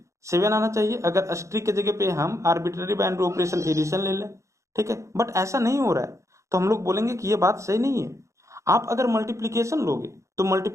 7 आना चाहिए, अगर स्ट्रिक के जगह पे हम आर्बिट्ररी बाइनरी ऑपरेशन एडिशन ले लें, ठीक है। बट ऐसा नहीं हो रहा है, तो हम लोग बोलेंगे कि ये बात सही नहीं है। आप अगर मल्टीप्लीकेशन लोगे तो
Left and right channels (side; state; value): left; late; 0.15 ms